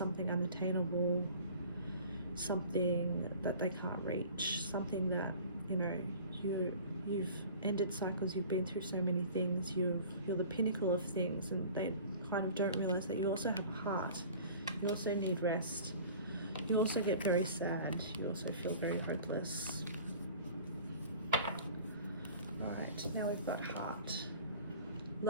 unattainable, something that they can't reach, something that, you know, you've ended cycles, you've been through so many things, you're the pinnacle of things, and they kind of don't realize that you also have a heart. You also need rest. You also get very sad. You also feel very hopeless. Alright, now we've got heart.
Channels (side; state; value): both; inverted; correlation -0.44